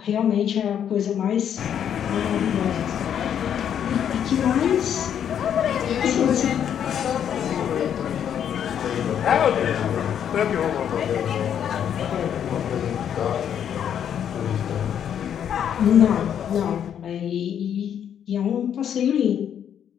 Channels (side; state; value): right; quieter; 9.1 dB